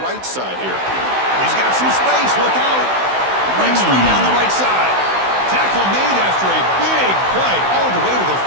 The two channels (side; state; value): left; late; 16 ms